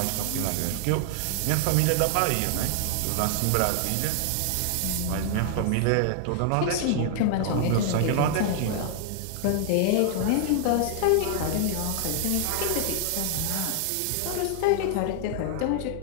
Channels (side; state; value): both; different; correlation 0.00